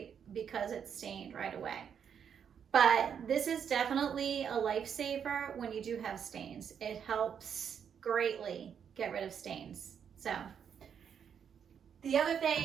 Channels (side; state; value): left; quieter; 7.8 dB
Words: because it's stained right away. But this is definitely a lifesaver when you do have stains. It helps greatly get rid of stains. So the other